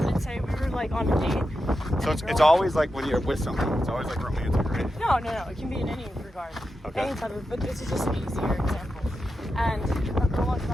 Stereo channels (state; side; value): normal; both; correlation 0.89